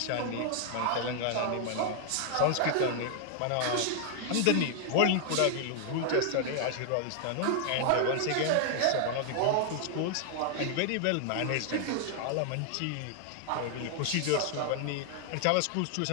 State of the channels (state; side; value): different; both; correlation 0.00